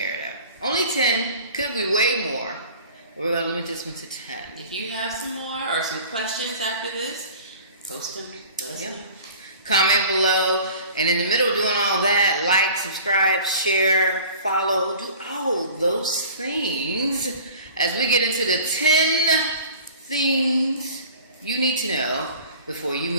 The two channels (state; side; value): inverted; both; correlation -0.44